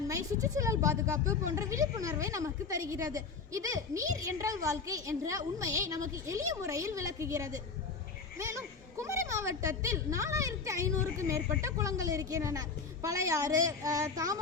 சுற்றுச்சூழல் பாதுகாப்பு போன்ற விழிப்புணர்வை நமக்கு தருகிறது. இது நீர் என்றால் வாழ்க்கை என்ற உண்மையை நமக்கு எளிய முறையில் விளக்குகிறது. மேலும் குமரி மாவட்டத்தில் 4500க்கும் மேற்பட்ட குளங்கள் இருக்கின்றன. பழையாறு,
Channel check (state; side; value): quieter; right; 4.9 dB